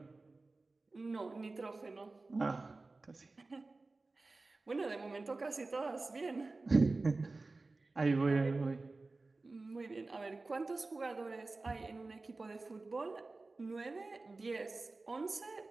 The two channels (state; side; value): quieter; left; 3.4 dB